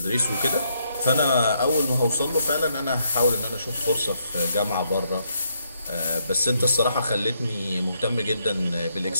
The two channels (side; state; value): both; inverted; correlation -0.75